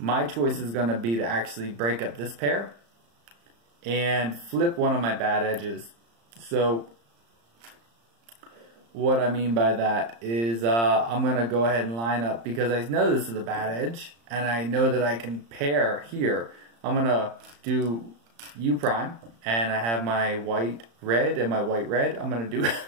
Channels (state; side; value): late; left; 35 ms